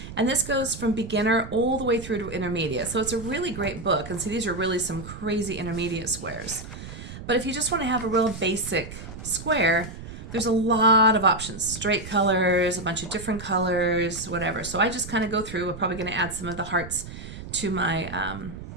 and this goes from beginner all the way through to intermediate. So it's a really great book. And see, these are really some crazy intermediate squares. But if you just want to have a real basic square, there's a lot of options. Straight colors, a bunch of different colors, whatever. So I just kind of go through. We're probably going to add some of the hearts to my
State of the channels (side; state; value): right; noise; rumble, 12 dB below the sound